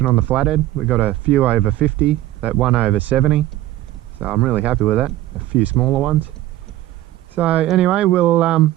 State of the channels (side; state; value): left; quieter; 14.9 dB